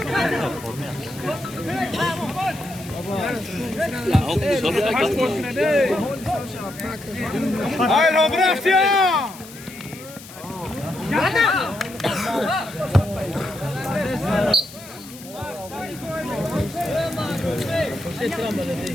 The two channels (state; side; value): noise; left; hiss, 17 dB below the sound